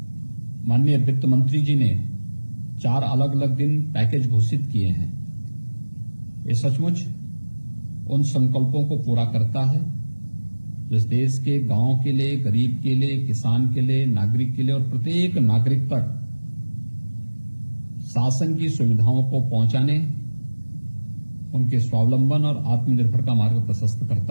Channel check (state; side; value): inverted; both; correlation -1.00